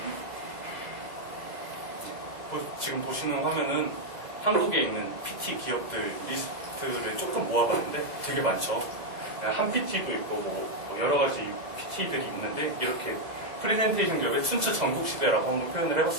지금 보시는 화면은 한국에 있는 PT 기업들 리스트를 조금 모아봤는데 되게 많죠. 한 PT도 있고 뭐 여러 가지 PT들이 있는데 이렇게 프레젠테이션 기업의 춘추 전국시대라고 한번 표현을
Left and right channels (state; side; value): late; left; 2.0 ms